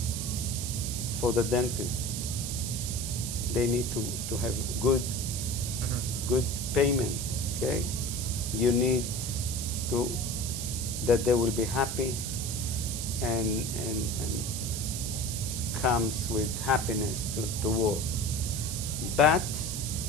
for the dentist. They need to have good payment, okay? You need to that they will be happy and comes with happiness to work. But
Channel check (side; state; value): right; noise; hiss, 4 dB below the sound